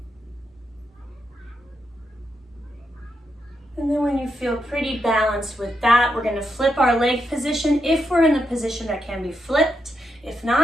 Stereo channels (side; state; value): both; normal; correlation 0.83